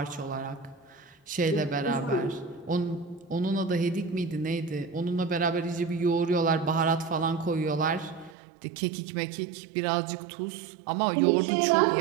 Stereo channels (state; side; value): drops out; left; at 8.3 s